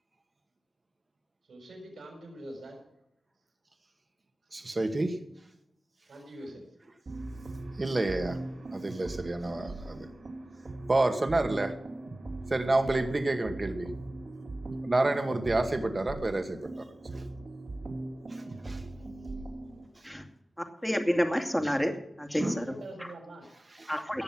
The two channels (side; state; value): both; normal; correlation 0.98